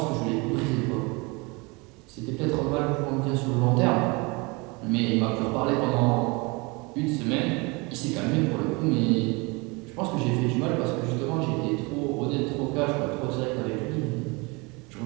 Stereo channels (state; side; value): quieter; left; 27.4 dB